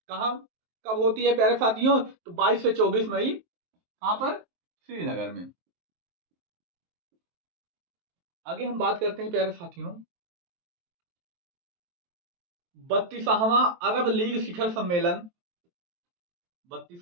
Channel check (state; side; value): late; left; 23 ms